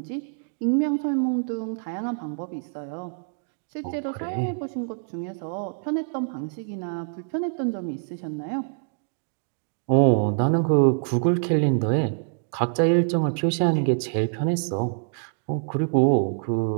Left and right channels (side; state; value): left; silent; digital silence